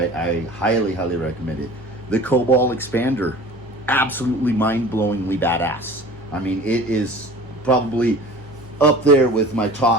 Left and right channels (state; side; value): normal; both; correlation 0.42